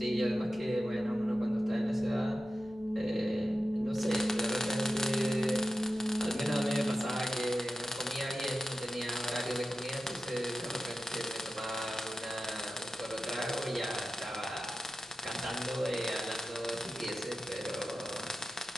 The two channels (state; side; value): normal; both; correlation 0.92